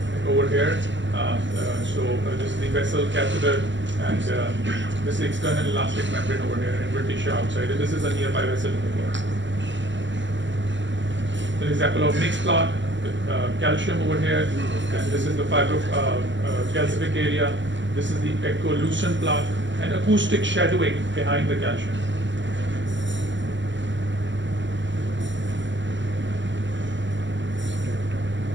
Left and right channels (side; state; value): left; late; 0.54 ms